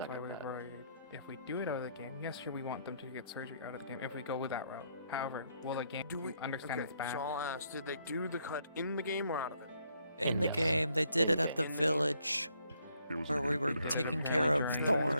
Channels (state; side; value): inverted; both; correlation -0.72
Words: stuck why at we're that. worried. If we do it out of the game, yes, sure, we want them to get surgery out of the game. If we go with that route, however, will the game understand okay, it's back? So I'll ask, did they do the cut in the game or out of it? In the game, they did it at the In the game. village where we were taking care of Okay,